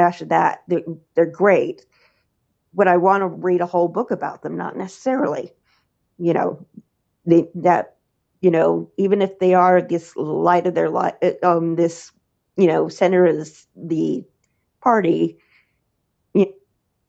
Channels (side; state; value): both; identical; correlation 1.00